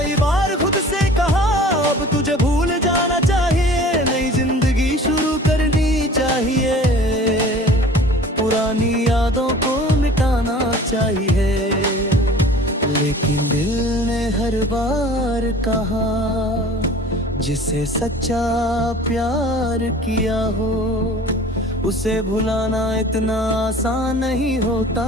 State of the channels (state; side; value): normal; both; correlation 0.45